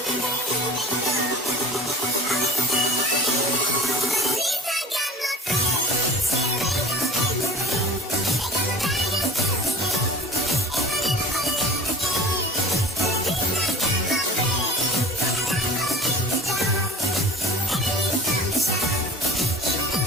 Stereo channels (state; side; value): normal; both; correlation 0.42